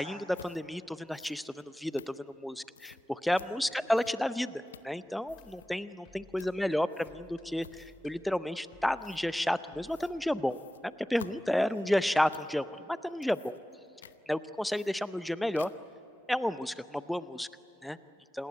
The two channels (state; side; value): normal; both; correlation 0.96